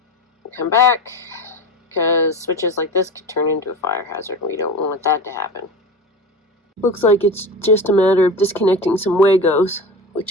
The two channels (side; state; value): both; normal; correlation 0.29